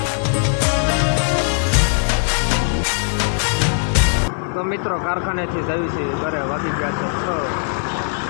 તો મિત્રો કારખાનેથી જવી છે ઘરે. વાગી ગયા છે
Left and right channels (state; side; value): silent; right; 66 dB below the other